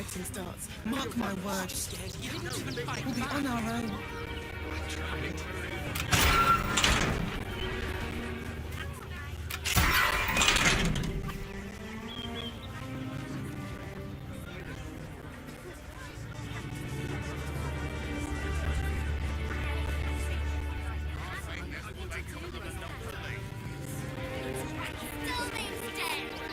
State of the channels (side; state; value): both; identical; correlation 1.00